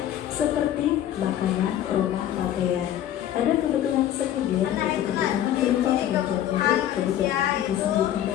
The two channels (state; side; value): quieter; right; 11.6 dB